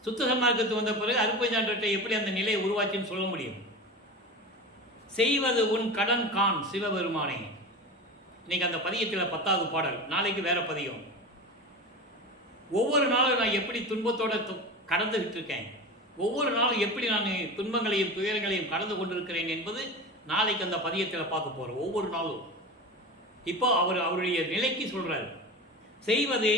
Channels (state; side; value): normal; both; correlation 0.28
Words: சுத்த சன்மார்க்கத்து வந்த பிறகு அருப்பெருஞ்சாண்டவர்கிட்ட எப்படி அந்த நிலையை உருவாச்சுன்னு சொல்ல முடியும். செய்வது உன் கடன் கான் சிவபெருமானே. இன்னைக்கு அந்த பதியத்தில் 10வது பாடல், நாளைக்கு வேற பதியம். ஒவ்வொரு நாளும் நான் எப்படி துன்பத்தோட கடந்துகிட்டு இருக்கேன், ஒவ்வொரு நாளும் எப்படி நான் துன்பங்களையும் துயரங்களையும் கடந்து கொண்டிருக்கிறேன் என்பது நாளைக்கு அந்த பதியத்தில் பார்க்க போகிறோம். ஒவ்வொரு நாளும் இப்போ அவருடைய நிலைக்கு சொல்றாரு. செய்வதே